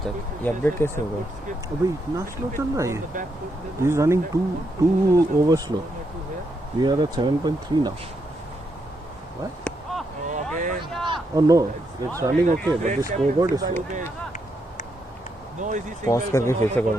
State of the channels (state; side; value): normal; both; correlation 0.80